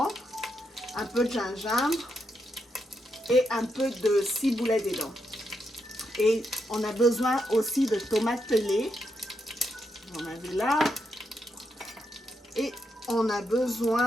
un peu de gingembre et un peu de ciboulette dedans. Et on a besoin aussi de tomates pelées. Vous en avez là. Et on a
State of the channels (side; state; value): both; normal; correlation 0.82